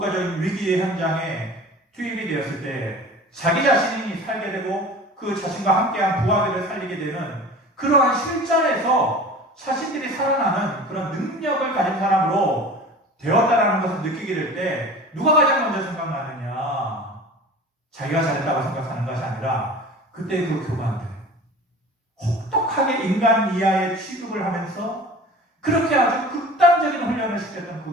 위기의 현장에 투입이 되었을 때 자기 자신이 살게 되고 그 자신과 함께한 부하들을 살리게 되는 그러한 실전에서 자신들이 살아나는 그런 능력을 가진 사람으로 되었다라는 것을 느끼게 될 때 누가 가장 먼저 생각나느냐? 자기가 잘했다고 생각하는 것이 아니라 그때 그 교관들, 혹독하게 인간 이하의 취급을 하면서 그렇게 아주 극단적인 훈련을 시켰던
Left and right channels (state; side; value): normal; both; correlation 0.39